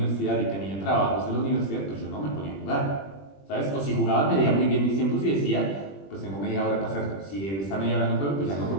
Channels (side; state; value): right; late; 21 ms